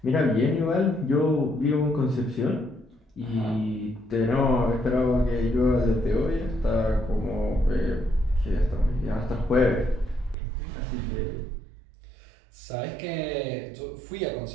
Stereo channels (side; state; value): left; drops out; at 10.4 s